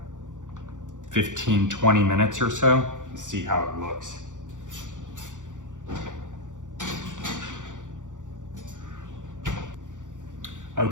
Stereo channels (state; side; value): late; left; 0.86 ms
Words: 15, 20 minutes or so. See how it looks.